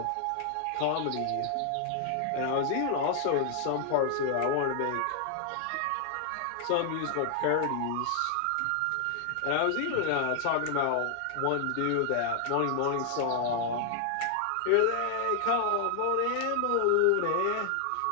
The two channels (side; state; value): both; different; correlation 0.00